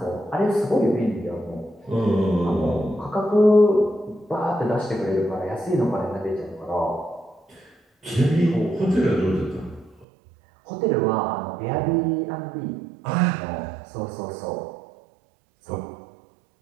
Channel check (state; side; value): drops out; left; at 10.1 s